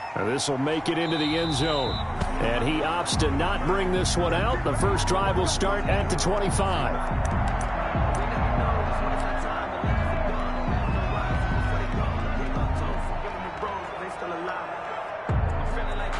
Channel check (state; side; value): identical; both; correlation 1.00